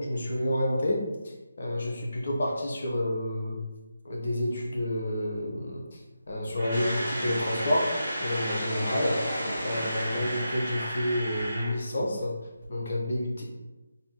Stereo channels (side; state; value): both; inverted; correlation -0.87